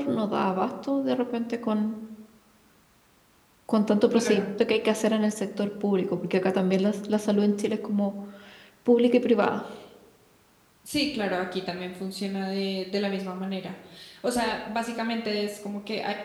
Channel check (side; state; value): both; identical; correlation 1.00